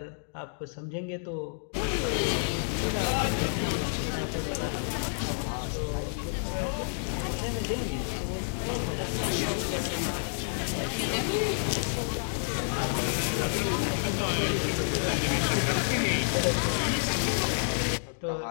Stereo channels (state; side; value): silent; right; digital silence